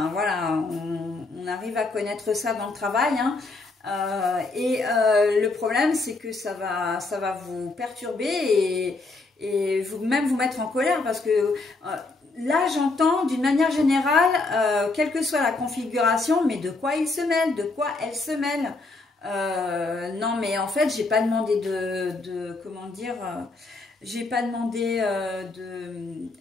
voilà, on arrive à connaître ça dans le travail, hein. Le problème, c'est que ça va vous perturber et même vous mettre en colère parce que là j'entends d'une manière générale, quelle que soit la configuration, mais de quoi il se mêle, de quoi elle se mêle. Non mais en fait j'ai pas demandé comment dire, j'ai pas demandé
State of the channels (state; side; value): quieter; right; 3.5 dB